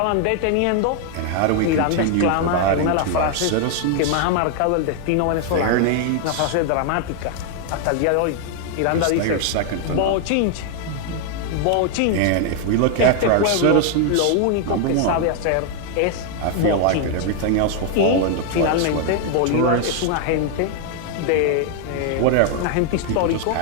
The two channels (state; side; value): different; both; correlation 0.00